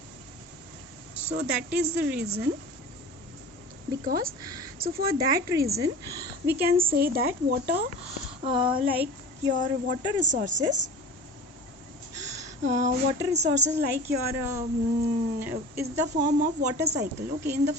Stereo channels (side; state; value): both; normal; correlation 0.37